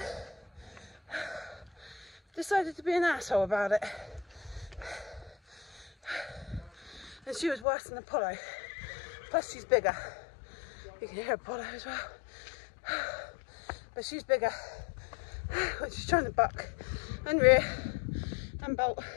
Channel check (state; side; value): drops out; right; at 7.7 s